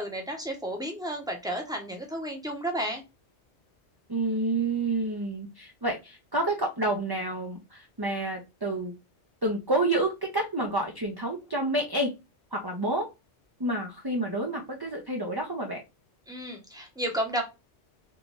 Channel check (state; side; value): normal; both; correlation 0.06